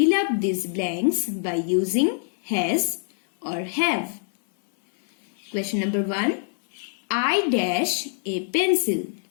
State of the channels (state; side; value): silent; right; digital silence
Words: up these blanks by using has or have. Question number 1. I dash a pencil.